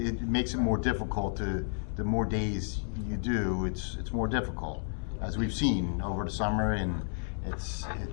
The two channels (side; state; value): right; silent; digital silence